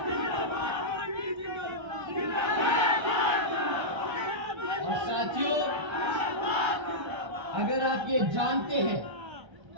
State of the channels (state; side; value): late; left; 1.3 ms